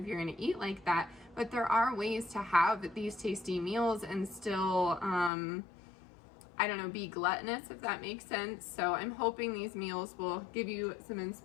you're gonna eat like that, but there are ways to have these tasty meals and still I don't know, be gluttonous, if that makes sense. So I'm hoping these meals will give you some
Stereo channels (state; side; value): drops out; right; at 5.3 s